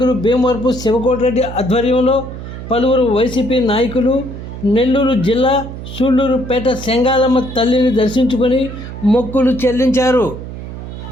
భీమవరపు శివకోటిరెడ్డి ఆధ్వర్యంలో పలువురు వైసీపీ నాయకులు నెల్లూరు జిల్లా సూళ్లూరుపేట సెంగాలమ్మ తల్లిని దర్శించుకొని మొక్కులు చెల్లించారు.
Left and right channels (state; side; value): noise; right; hum, 10 dB below the sound